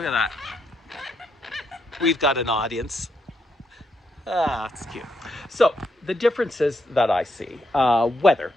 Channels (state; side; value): normal; both; correlation 0.79